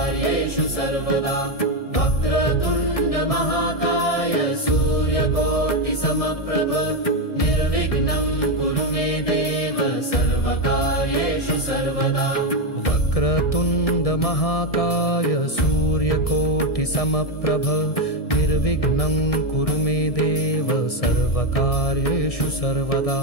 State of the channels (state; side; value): late; right; 1.6 ms